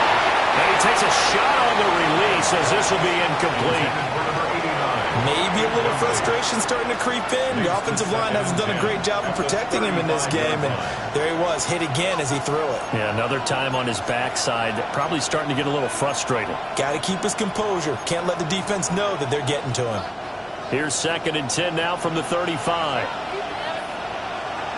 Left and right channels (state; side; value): identical; both; correlation 1.00